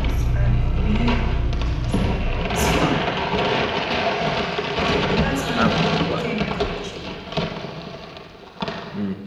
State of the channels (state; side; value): identical; both; correlation 1.00